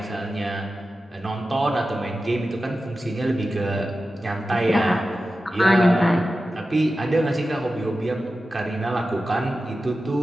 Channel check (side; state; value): both; normal; correlation 0.93